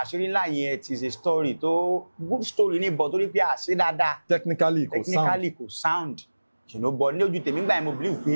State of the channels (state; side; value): inverted; both; correlation -1.00